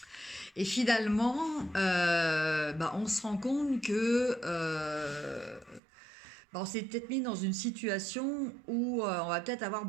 Et finalement, bah, on se rend compte que bah, on s'est peut-être mis dans une situation où on va peut-être avoir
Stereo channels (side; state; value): left; drops out; at 5.8 s